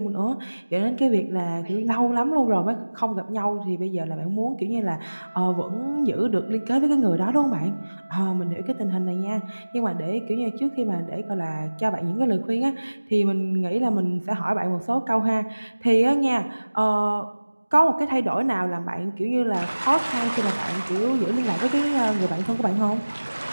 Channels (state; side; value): inverted; both; correlation -1.00